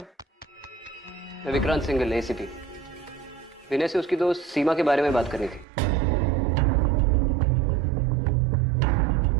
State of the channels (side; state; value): left; drops out; at 5.7 s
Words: मैं विक्रांत सिंघल, एसीपी। विनय से उसकी दोस्त सीमा के बारे में बात करनी थी।